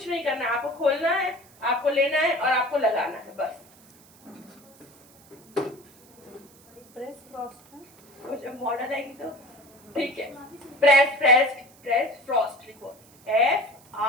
नहीं करना है, आपको खोलना है, आपको लेना है और आपको लगाना है, बस। प्रेस फ्रॉस्ट है, तो जब मॉडल आएगी तो ठीक है। प्रेस फ्रॉस्ट लिखो,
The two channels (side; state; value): right; noise; hiss, 26 dB below the sound